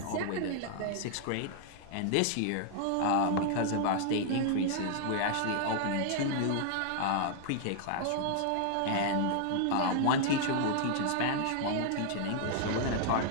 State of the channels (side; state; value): both; different; correlation 0.00